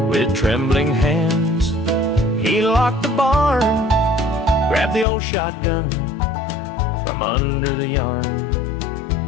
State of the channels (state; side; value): drops out; right; at 5.1 s